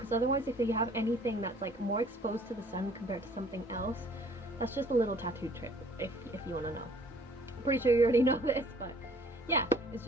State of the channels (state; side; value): normal; both; correlation 0.56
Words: otherwise if you have anything that's like more exposed to the sun compared to something else, that's just a little tattoo tip if you want to know. I'm pretty sure you already know this, but yeah, it's